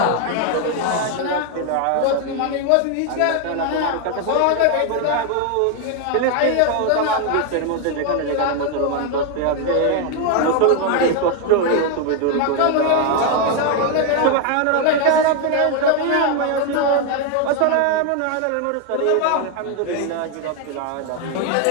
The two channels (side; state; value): both; different; correlation 0.01